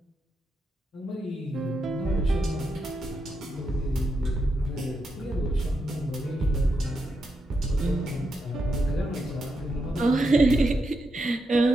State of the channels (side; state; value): both; normal; correlation 0.84